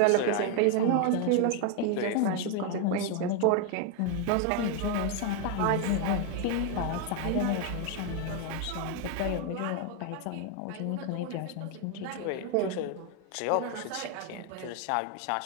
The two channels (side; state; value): both; different; correlation 0.01